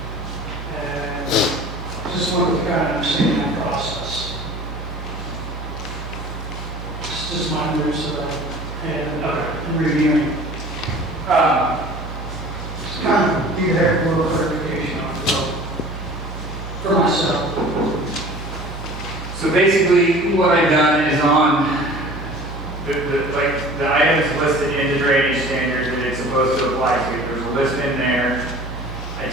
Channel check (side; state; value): both; normal; correlation 0.44